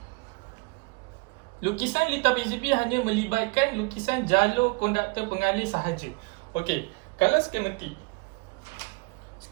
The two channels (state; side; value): quieter; left; 27.2 dB